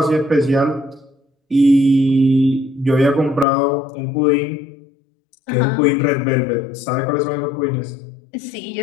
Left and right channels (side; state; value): right; drops out; at 3.5 s